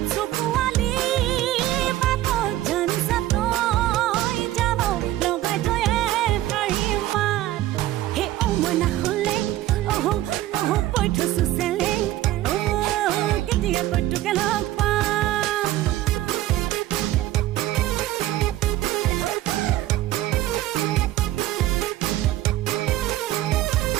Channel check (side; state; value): left; quieter; 14.8 dB